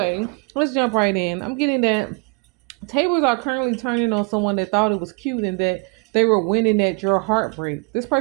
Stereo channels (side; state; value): left; quieter; 31.4 dB